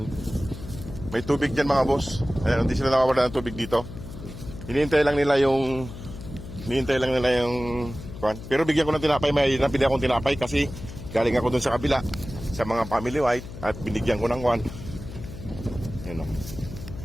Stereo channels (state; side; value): noise; left; hum, 12 dB below the sound